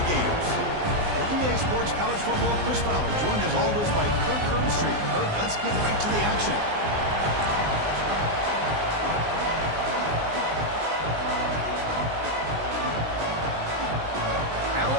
Gators. For EA Sports College Football, Chris Fowler, joined as always by Kirk Herbstreit. Kirk, let's get right to the action.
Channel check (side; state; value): left; late; 19 ms